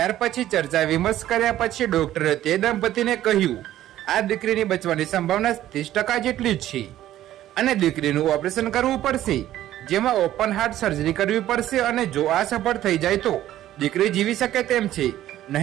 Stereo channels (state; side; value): quieter; left; 13.2 dB